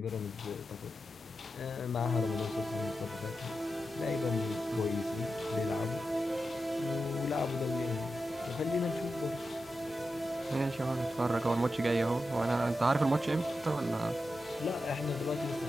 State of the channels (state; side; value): normal; both; correlation 0.90